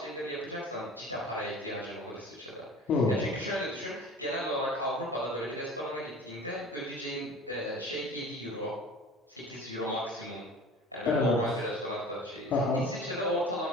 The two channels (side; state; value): both; normal; correlation 0.41